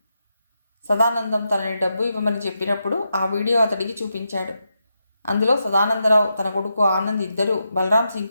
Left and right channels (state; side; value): inverted; both; correlation -0.86